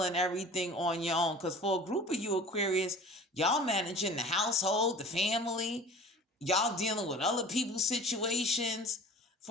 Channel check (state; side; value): normal; both; correlation 0.42